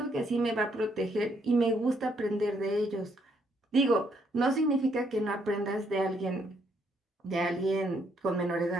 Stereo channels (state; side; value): normal; both; correlation 0.72